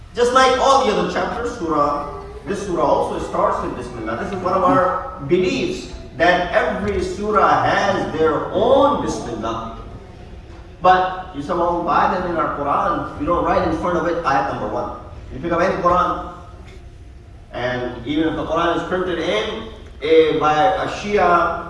Just like all the other chapters, this surah also starts with Bismillah. This is one of our beliefs, that every surah has their own Bismillah. But you somehow buy them in our Quran, you don't write in front of it ayat number 1. You pick up any Quran, and even if the Quran is printed by a Shia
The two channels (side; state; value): both; identical; correlation 1.00